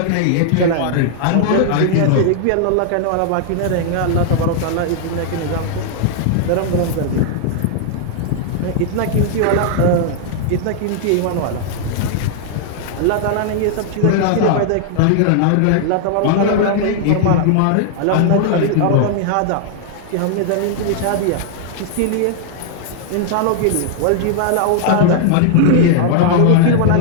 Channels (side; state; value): both; different; correlation -0.01